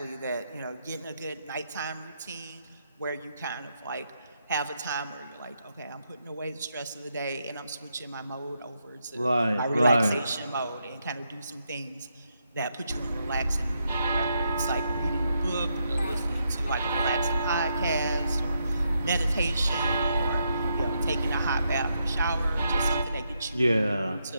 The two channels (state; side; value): inverted; both; correlation -0.80